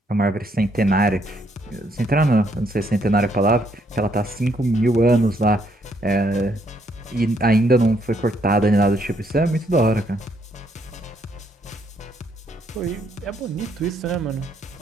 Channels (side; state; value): both; normal; correlation 0.71